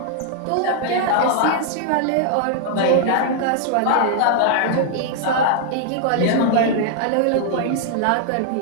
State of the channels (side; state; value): both; different; correlation -0.01